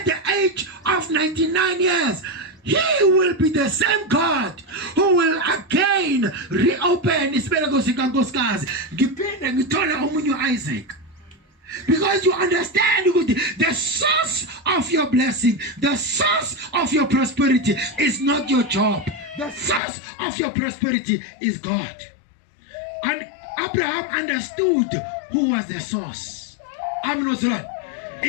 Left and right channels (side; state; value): right; drops out; at 19.8 s